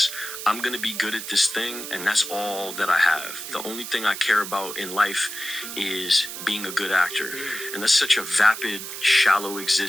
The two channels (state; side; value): noise; right; hiss, 8 dB below the sound